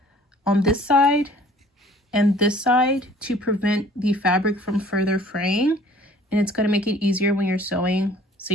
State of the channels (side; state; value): both; normal; correlation 0.52